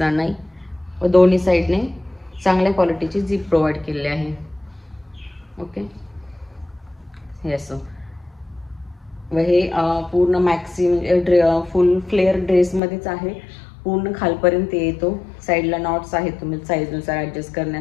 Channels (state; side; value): drops out; right; at 12.8 s